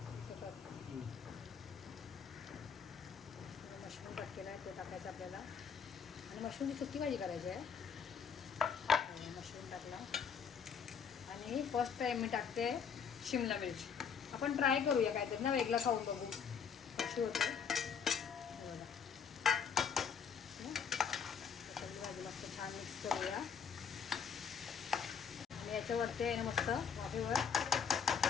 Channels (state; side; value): quieter; right; 6.7 dB